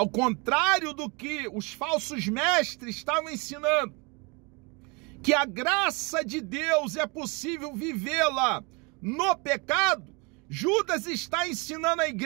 contrário do que os falsos mestres estavam ensinando, que a graça de Deus é possível vivê-la no pecado, Judas está ensinando a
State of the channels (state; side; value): quieter; left; 29.8 dB